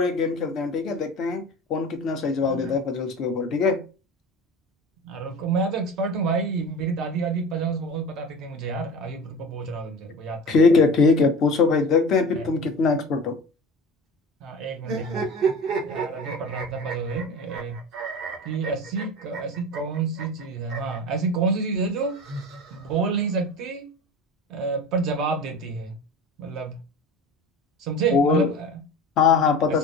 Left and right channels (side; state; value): both; normal; correlation 0.34